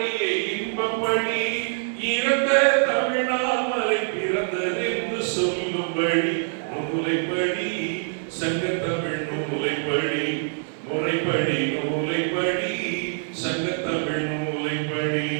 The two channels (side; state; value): left; silent; 62 dB below the other